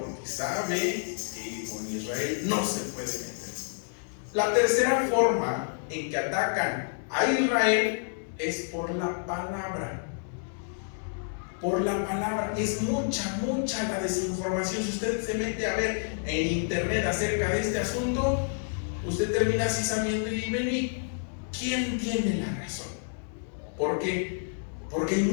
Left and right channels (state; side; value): silent; right; digital silence